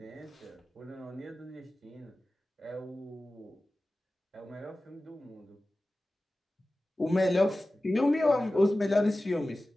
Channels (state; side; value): normal; both; correlation 0.96